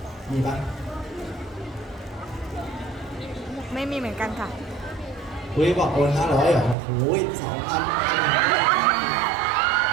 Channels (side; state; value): left; drops out; at 6.8 s